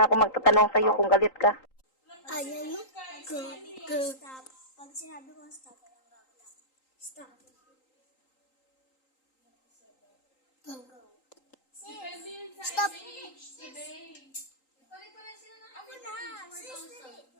ako magtatanong sa'yo kung galit ka. Ayaw mo? Go. Stop. Pag sinabi ko stop, walang gagawin. Stop. Go. Stop. Ako na. Pag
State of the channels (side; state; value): right; late; 3.8 ms